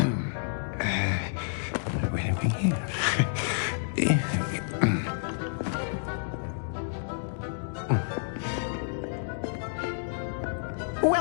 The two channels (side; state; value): right; silent; digital silence